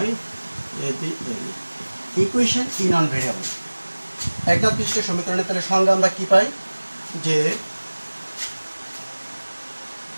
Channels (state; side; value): inverted; both; correlation -1.00